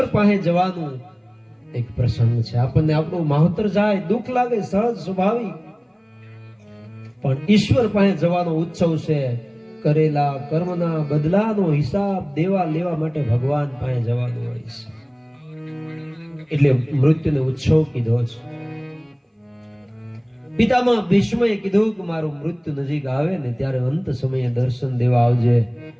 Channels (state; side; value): identical; both; correlation 1.00